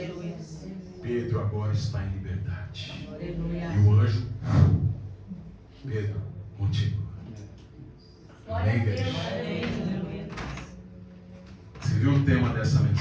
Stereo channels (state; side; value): identical; both; correlation 1.00